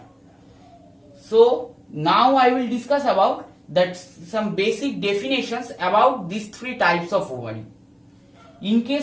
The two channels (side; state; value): both; identical; correlation 1.00